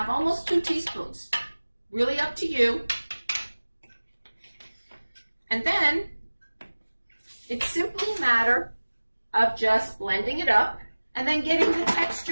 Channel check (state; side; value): inverted; both; correlation -1.00